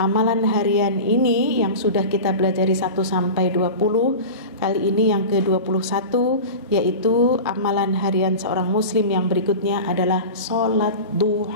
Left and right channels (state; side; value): inverted; both; correlation -0.30